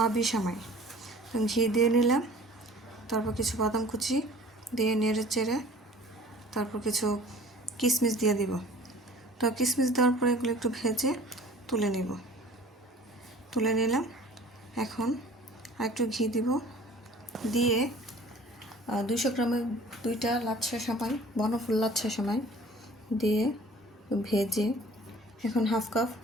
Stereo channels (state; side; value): normal; both; correlation 0.48